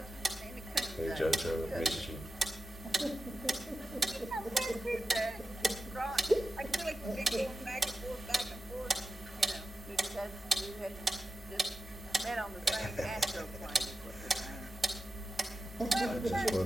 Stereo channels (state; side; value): normal; both; correlation 0.92